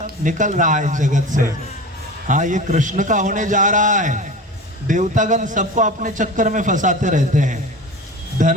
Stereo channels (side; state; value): both; normal; correlation 0.33